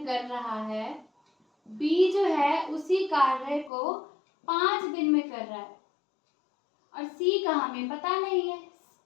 कर रहा है, बी जो है उसी कार्य को 5 दिन में कर रहा है, और सी का हमें पता नहीं है।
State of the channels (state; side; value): drops out; right; at 3.7 s